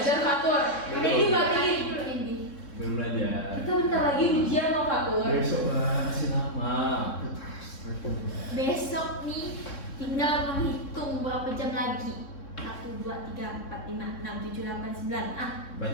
Fatur? Ini dibagiin dulu ini. Belum belajar. Kita bentar lagi ujian loh, Fatur. Besok lah, masih lama. Besok nih tinggal menghitung berapa jam lagi. 1, 2, 3, 4, 5, 6, 7, 8, 9. Banyak.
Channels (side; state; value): right; late; 3.6 ms